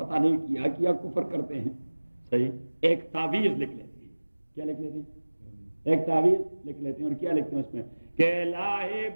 نہیں کیا کفر کرتے ہیں. صحیح. ایک تعویذ لکھ لیتے ہیں. کیا لکھ لیتے ہیں؟ ایک تعویذ لکھ لیتے ہیں. اور کیا لکھتے ہیں اس میں کہ لاہے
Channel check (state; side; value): inverted; both; correlation -1.00